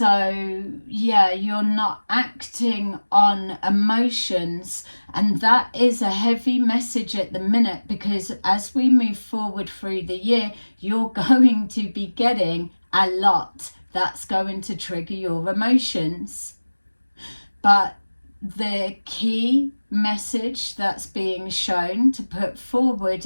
yeah, you're not acting on emotions, and that is a heavy message at the minute, because as we move forward through the year, you're going to be getting a lot that's going to trigger your emotions. But the key message that's being shown to put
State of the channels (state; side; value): inverted; both; correlation -1.00